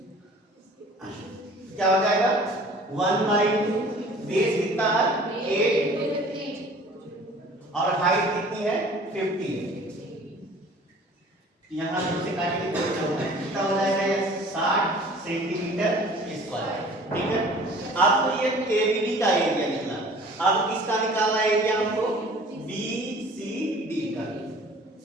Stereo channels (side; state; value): both; normal; correlation 0.48